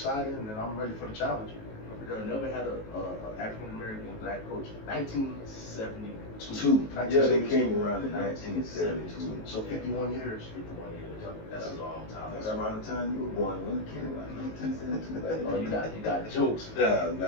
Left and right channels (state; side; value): late; right; 19 ms